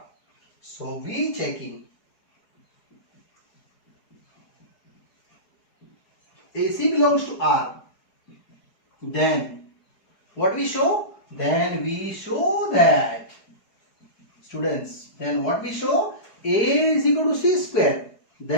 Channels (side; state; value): right; late; 4.8 ms